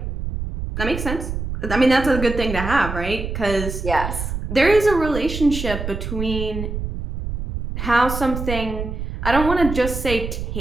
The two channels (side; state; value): right; noise; rumble, 5 dB below the sound